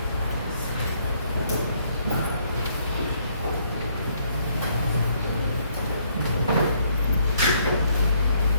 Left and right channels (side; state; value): both; inverted; correlation -0.68